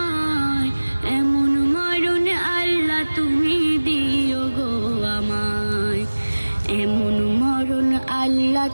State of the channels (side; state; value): both; inverted; correlation -1.00